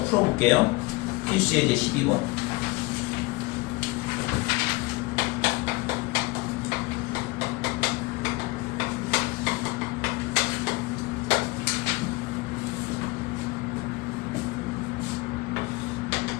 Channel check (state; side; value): quieter; right; 24.0 dB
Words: 풀어볼게요. 필수 예제 12번.